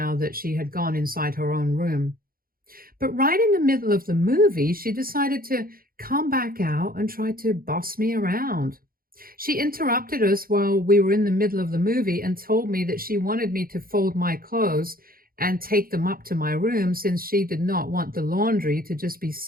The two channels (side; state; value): left; late; 0.42 ms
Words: that she had gone inside her own room. But right in the middle of the movie, she decided to come back out and try to boss me around. She interrupted us while we were in the middle of the movie and told me that she wanted me to fold my clothes and take them up to my room since she did not want the laundry to just be